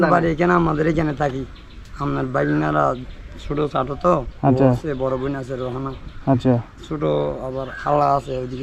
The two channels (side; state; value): both; identical; correlation 1.00